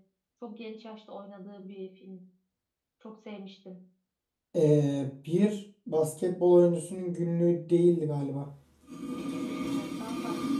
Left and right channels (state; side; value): identical; both; correlation 1.00